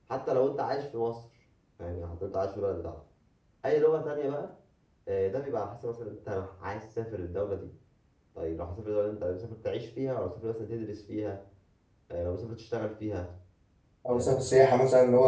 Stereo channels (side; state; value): both; identical; correlation 1.00